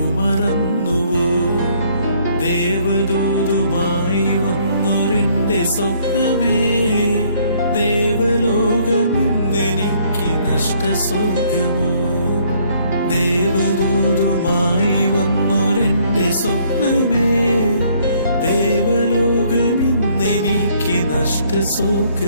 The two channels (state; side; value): inverted; both; correlation -0.64